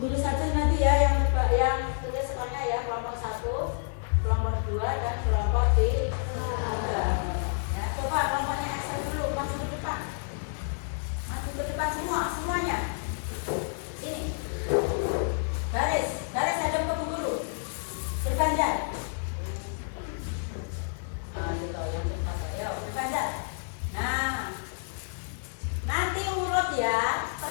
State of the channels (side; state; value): right; silent; digital silence